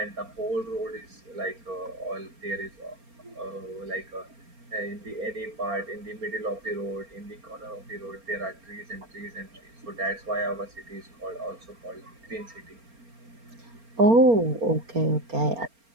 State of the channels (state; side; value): late; left; 4.3 ms